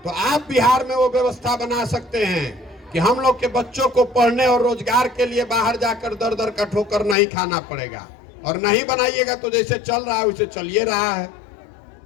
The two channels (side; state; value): right; drops out; at 7.2 s